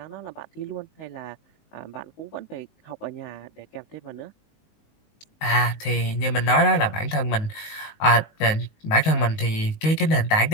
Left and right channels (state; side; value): late; right; 19 ms